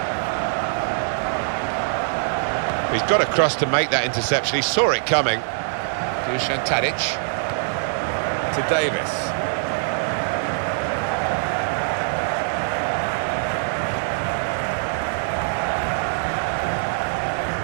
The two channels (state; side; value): silent; left; digital silence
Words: He's got across to make that interception. He saw it coming. Dusan Tadic to Davis.